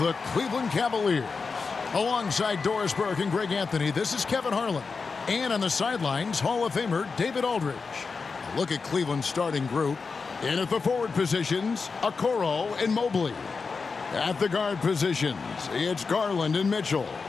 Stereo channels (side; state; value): right; quieter; 4.8 dB